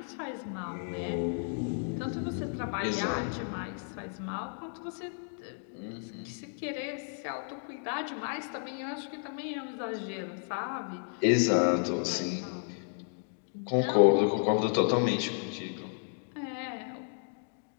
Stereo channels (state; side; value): silent; right; 56 dB below the other